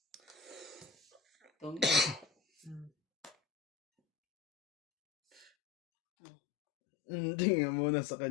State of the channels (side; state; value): right; drops out; at 5.5 s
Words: Tong Hindi nga muna sa